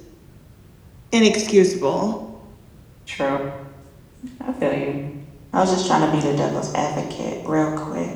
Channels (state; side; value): identical; both; correlation 1.00